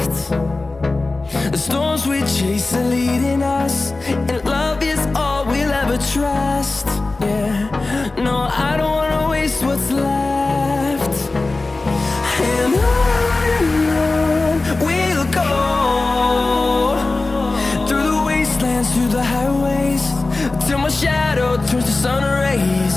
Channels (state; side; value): quieter; right; 3.3 dB